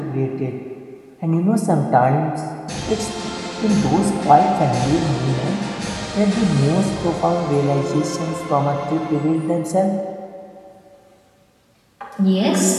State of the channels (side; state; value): both; identical; correlation 1.00